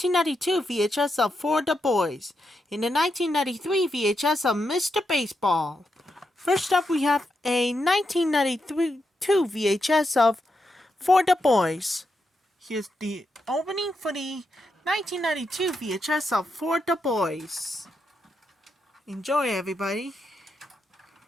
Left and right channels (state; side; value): normal; both; correlation 0.84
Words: VHS of For the Boys, in the 1993 VHS of Mr. Baseball. First up, we have a 1992 VHS of For the Boys. Here's the opening for the 1992 VHS of For the Boys. Enjoy, everybody.